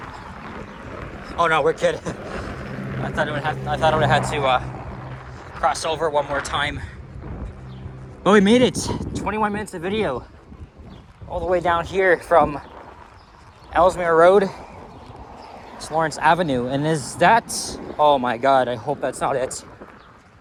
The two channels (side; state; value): both; identical; correlation 1.00